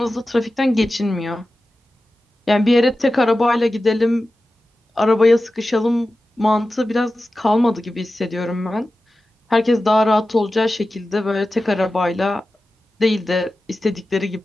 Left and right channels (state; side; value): normal; both; correlation 0.94